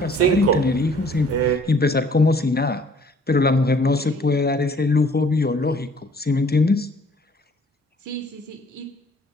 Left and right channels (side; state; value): both; normal; correlation 0.56